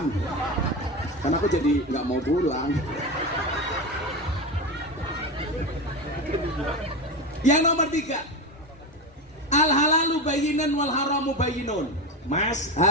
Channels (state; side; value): normal; both; correlation 0.19